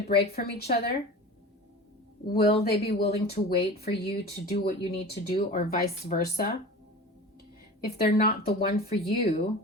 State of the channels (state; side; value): normal; both; correlation 0.35